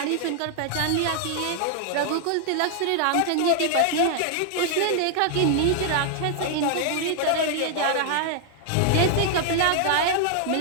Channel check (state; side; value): different; both; correlation 0.00